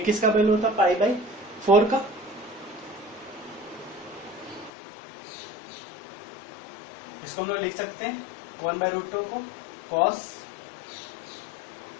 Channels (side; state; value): right; drops out; at 4.7 s